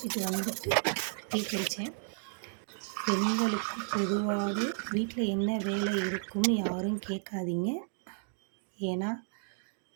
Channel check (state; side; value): silent; left; digital silence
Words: வந்துட்டு டீ குடித்தேன். பெண்களுக்கு பொதுவாகவே வீட்டில் என்ன வேலை இருக்கும்னு யாரும் கேட்காதீங்க. ஏன்னா